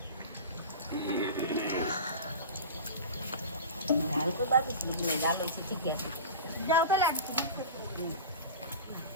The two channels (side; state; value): both; inverted; correlation -0.31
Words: ঝাল তো বাবু দিনে ঝাল হয়েছে ঠিকই আছে। যাও তো লাগছে